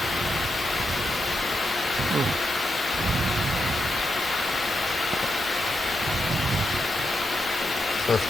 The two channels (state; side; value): normal; both; correlation 0.84